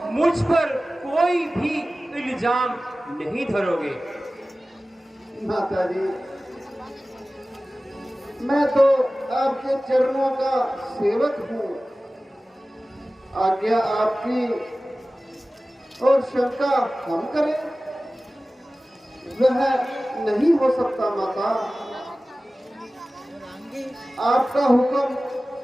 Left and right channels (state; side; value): normal; both; correlation 0.97